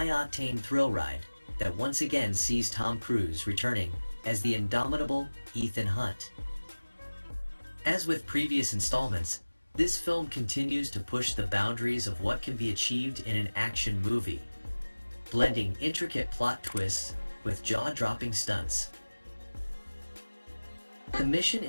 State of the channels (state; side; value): inverted; both; correlation -1.00